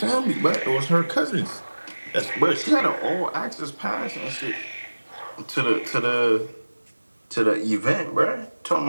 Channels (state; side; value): inverted; both; correlation -1.00